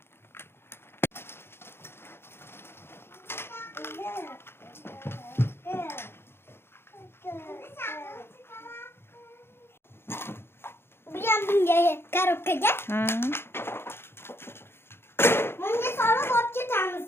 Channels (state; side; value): late; right; 0.11 ms